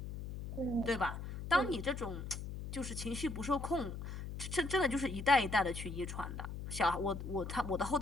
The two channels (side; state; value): left; noise; hum, 7 dB below the sound